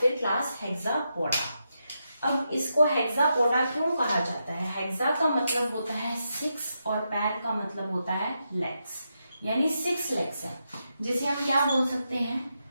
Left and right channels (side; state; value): both; inverted; correlation -0.85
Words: फिर क्लास हेक्सापोडा। अब इसको हेक्सापोडा क्यों कहा जाता है, हेक्सा का मतलब होता है 6, और पैर का मतलब होता है लेग्स, यानी 6 लेग्स है, जिसे हम क्या बोल सकते हैं,